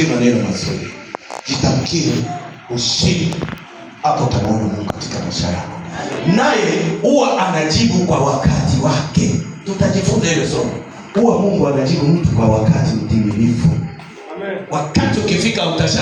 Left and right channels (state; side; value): identical; both; correlation 1.00